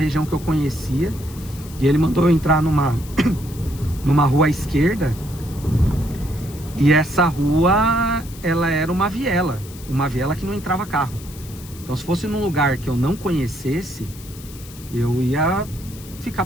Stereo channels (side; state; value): left; noise; hiss, 18 dB below the sound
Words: que eu conhecia e ele mandou eu entrar numa rua à esquerda. E essa rua, ela era uma viela que não entrava carro. Então se fosse num lugar que eu não conhecesse, eu ia ficar